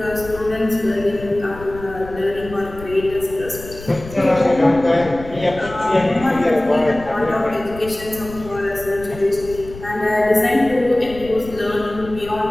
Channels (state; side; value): noise; left; rumble, 15 dB below the sound